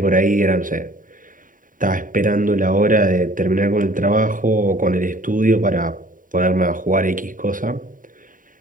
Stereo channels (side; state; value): left; late; 0.39 ms